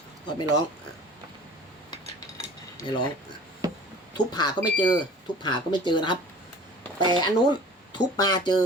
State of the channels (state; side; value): normal; both; correlation 0.45